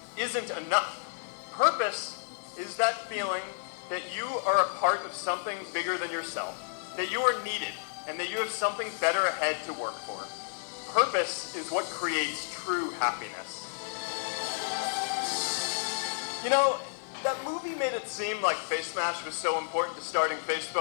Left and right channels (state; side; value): silent; right; digital silence